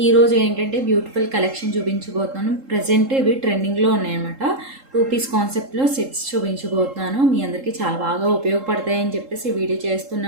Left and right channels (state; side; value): late; left; 3.7 ms